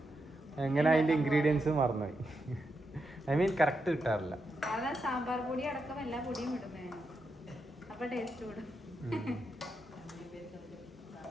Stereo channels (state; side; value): normal; both; correlation 0.85